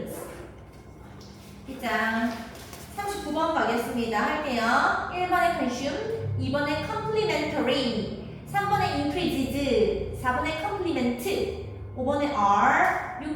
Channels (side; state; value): both; identical; correlation 1.00